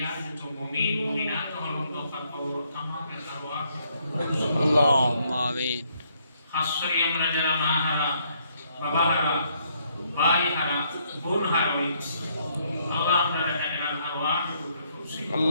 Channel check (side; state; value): both; inverted; correlation -0.70